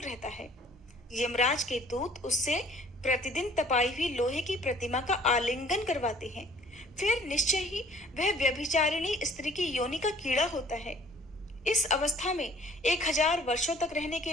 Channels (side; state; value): both; normal; correlation 0.55